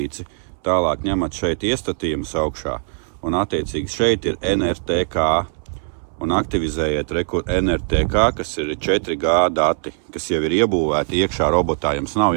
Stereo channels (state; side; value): silent; left; 65 dB below the other